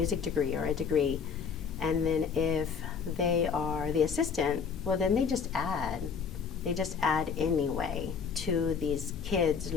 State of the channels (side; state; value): right; quieter; 6.2 dB